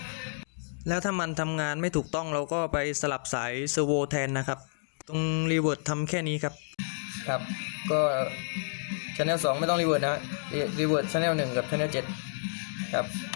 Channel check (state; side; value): silent; right; digital silence